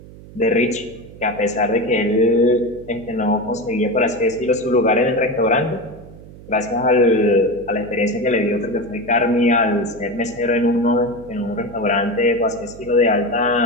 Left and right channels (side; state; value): right; noise; hum, 18 dB below the sound